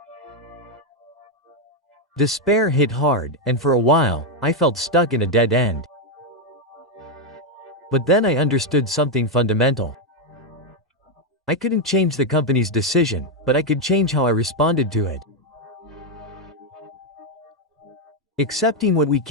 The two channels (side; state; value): both; normal; correlation 0.03